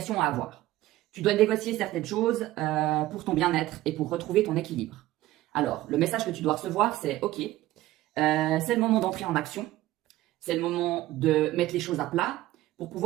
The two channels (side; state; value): left; quieter; 16.0 dB